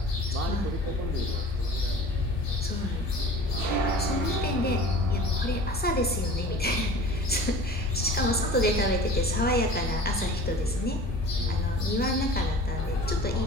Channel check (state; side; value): normal; both; correlation 0.41